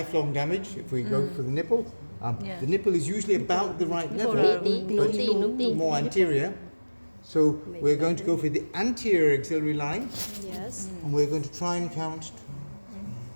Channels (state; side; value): inverted; both; correlation -1.00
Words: damage if we go for the nipple. The nipple is usually about the right level, but more anterior. So we're going to go for the anterior axillary line, Yes. and we're going to try and count